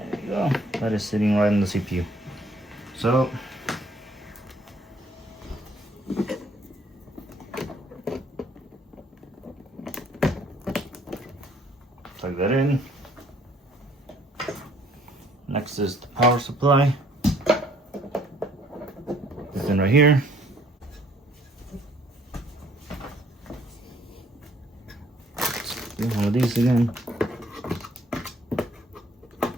you go. That is sitting right on the CPU. So plug that in. Next is the power supply. It's in right here. Do one of these again.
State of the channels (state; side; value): normal; both; correlation 0.62